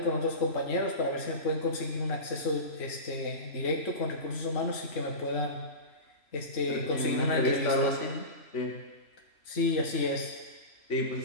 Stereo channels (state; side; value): late; right; 3.0 ms